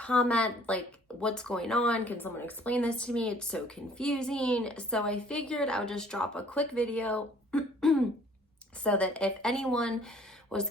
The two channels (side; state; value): both; normal; correlation 0.56